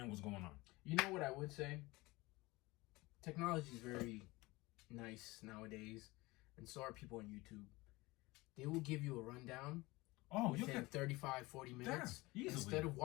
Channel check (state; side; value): quieter; right; 21.7 dB